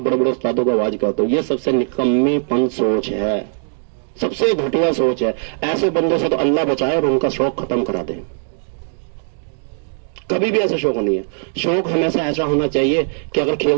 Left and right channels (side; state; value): left; silent; digital silence